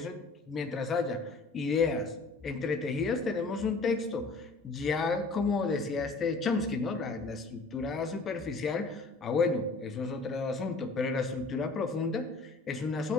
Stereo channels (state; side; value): quieter; right; 3.7 dB